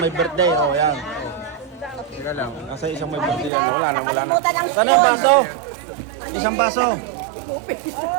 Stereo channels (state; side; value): drops out; left; at 3.5 s